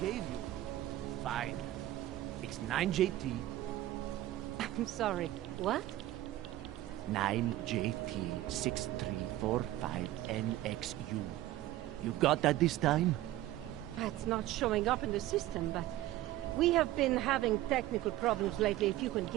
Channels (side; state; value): left; quieter; 15.2 dB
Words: Gave you. Fine. It's 9JT. I'm sorry. What? 9JT6345NXU. You've got that this time? It's not showing up in the system, but we have been having technical problems lately. If you can